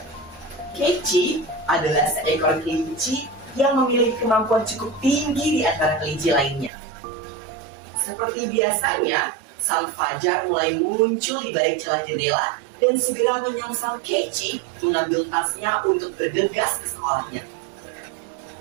Keiichi adalah seekor kelinci yang memiliki kemampuan cukup tinggi di antara kelinci lainnya. Seperti biasanya, sang fajar mulai muncul di balik celah jendela dan segera menyongsong Keiichi mengambil tasnya untuk bergegas ke sekolahnya.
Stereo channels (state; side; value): drops out; left; at 6.7 s